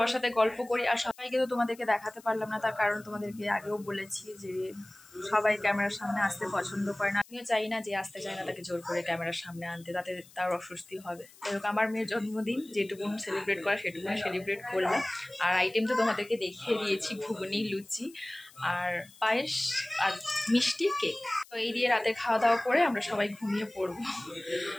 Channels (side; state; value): left; noise; hiss, 24 dB below the sound